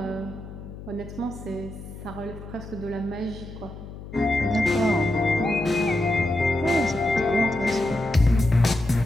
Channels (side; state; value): left; noise; hum, 13 dB below the sound